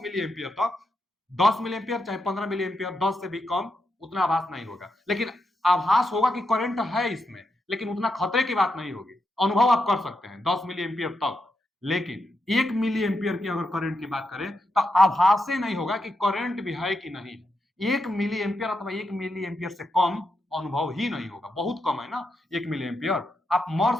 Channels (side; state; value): both; normal; correlation 0.85